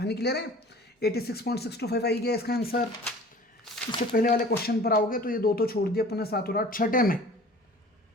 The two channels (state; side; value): normal; both; correlation 0.45